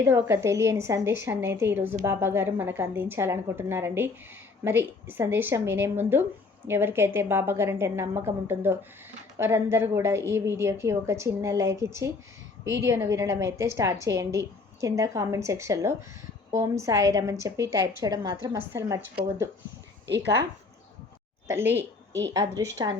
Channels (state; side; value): quieter; right; 4.1 dB